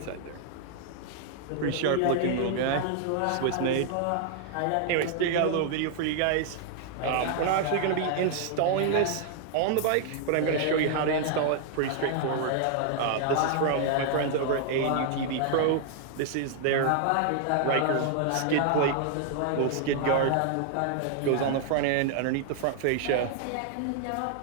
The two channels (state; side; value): different; both; correlation 0.00